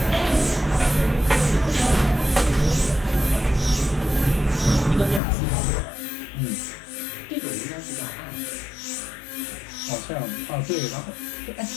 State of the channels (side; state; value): right; drops out; at 5.2 s